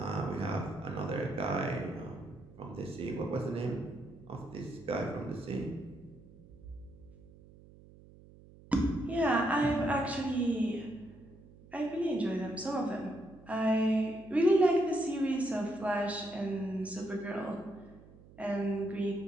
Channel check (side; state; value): right; noise; hum, 22 dB below the sound